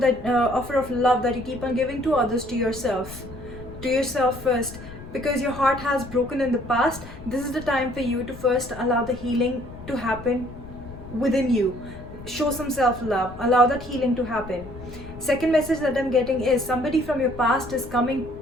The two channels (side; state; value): left; noise; rumble, 14 dB below the sound